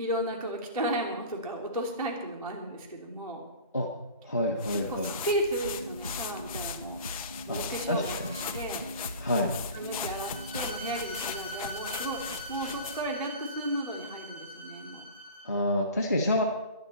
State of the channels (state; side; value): inverted; both; correlation -0.38